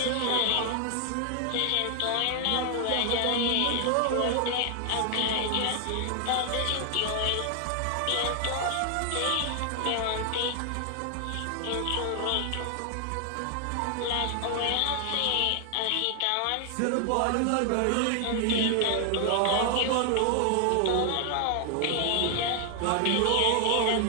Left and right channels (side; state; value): both; different; correlation 0.00